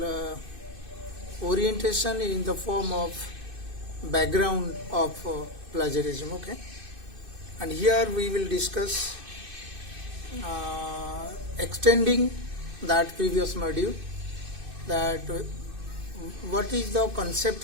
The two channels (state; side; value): late; left; 2.6 ms